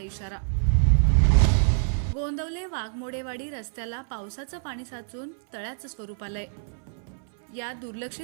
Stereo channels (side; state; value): left; silent; 61 dB below the other